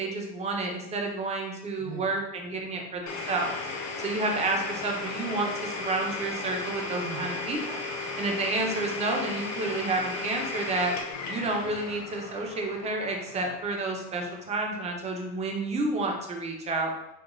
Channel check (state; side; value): normal; both; correlation 0.14